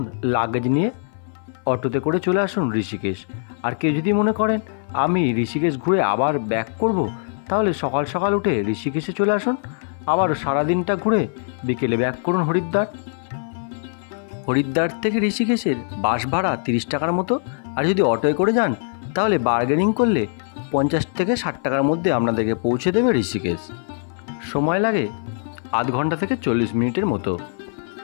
লাগেজ নিয়ে, অটোতে করে চলে আসুন ঋষিকেশ। আর কেউ যদি মনে করেন আমি ঋষিকেশ ঘুরে আবার ব্যাক করব তাহলে সকাল সকাল উঠে ঋষিকেশে চলে আসুন, আবার সারাদিনটা ঘুরে বিকেলে ব্যাক করুন হরিদ্বার। হরিদ্বার থেকে ঋষিকেশের বাস ভাড়া 30 টাকার মতো। আর যদি অটোয় করে যান তাহলে বার্গেনিং করলে 50 থেকে 60 টাকার মধ্যে আপনাদেরকে পৌঁছে দেবে ঋষিকেশ। সময় লাগে আধ ঘন্টা থেকে 40 মিনিটের মতো।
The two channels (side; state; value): right; silent; 57 dB below the other